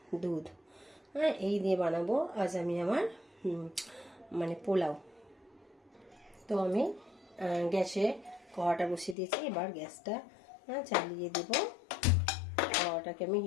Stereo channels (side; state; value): right; drops out; at 9.2 s